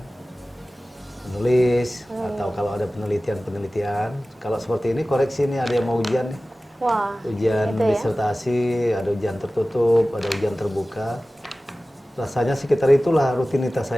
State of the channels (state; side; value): normal; both; correlation 0.96